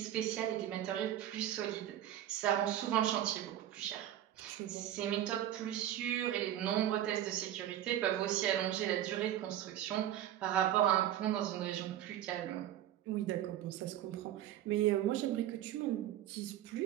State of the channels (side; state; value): left; quieter; 12.0 dB